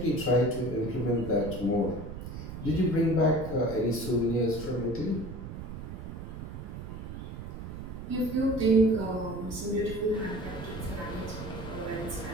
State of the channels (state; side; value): noise; right; rumble, 9 dB below the sound